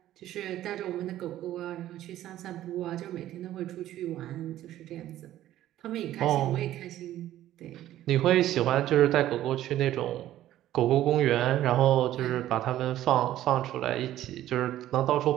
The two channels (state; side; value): quieter; left; 13.4 dB